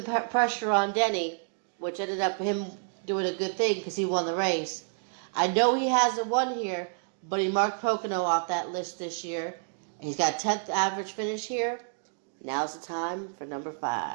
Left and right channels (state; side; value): silent; left; digital silence